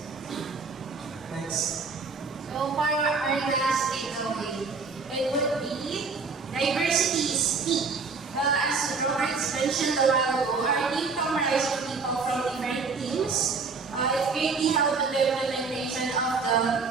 Next. So for our last takeaway, it would be mentioned a while ago, our team comprises of people from different teams. It greatly helped with the implementation of the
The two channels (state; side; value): quieter; left; 4.6 dB